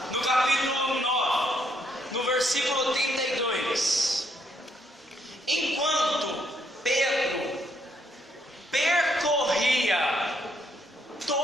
no capítulo 9, no versículo 32. Enquanto Pedro percorria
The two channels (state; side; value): normal; both; correlation 0.72